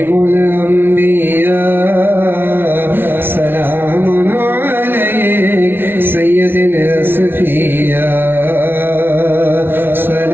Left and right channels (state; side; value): late; left; 0.11 ms